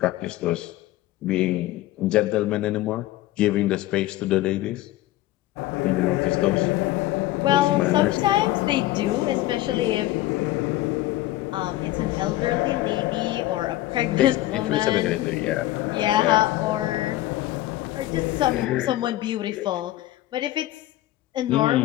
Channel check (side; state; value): right; quieter; 15.9 dB